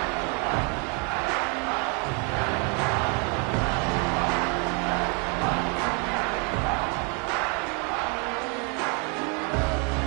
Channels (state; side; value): quieter; left; 33.7 dB